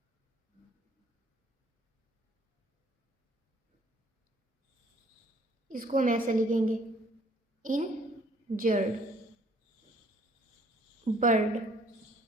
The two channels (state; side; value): normal; both; correlation 0.60